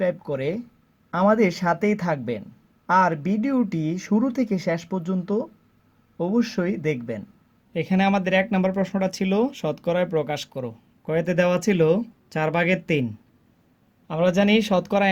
করে আমাদের সাথেই থাকবেন, আর ভিডিওটি শুরু থেকে শেষ পর্যন্ত অবশ্যই দেখবেন। এখানে আমাদের 1 নম্বর প্রশ্নটা ছিল শতকরায় প্রকাশ করো। কয়তে দেওয়া ছিল 4/3। আমরা জানি শতকরা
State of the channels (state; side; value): identical; both; correlation 1.00